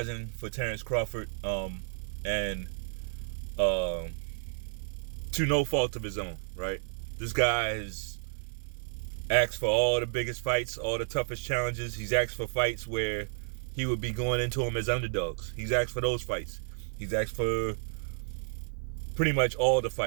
for Terence Crawford, and to no fault of his own, right? This guy has asked for all the biggest fights, all the toughest challenges. He's asked for fights where he would be going into them as underdogs. He's asked for those fights. He's asked for pretty much all the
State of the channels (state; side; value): silent; left; 57 dB below the other